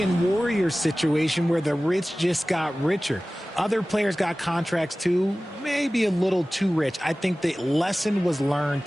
and Warriors situation where the rich just got richer. Other players got contracts too, maybe a little too rich. I think the lesson was learned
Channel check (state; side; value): normal; both; correlation 0.97